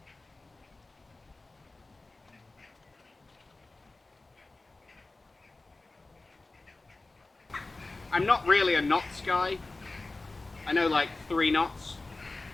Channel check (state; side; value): quieter; right; 3.2 dB